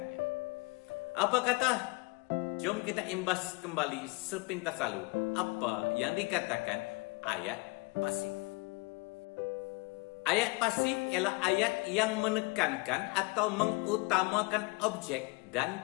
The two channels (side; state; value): right; quieter; 26.3 dB